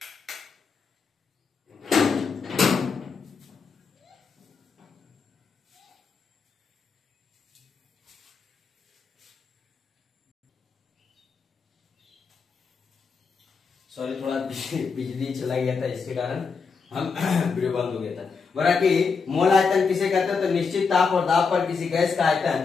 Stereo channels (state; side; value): quieter; right; 5.2 dB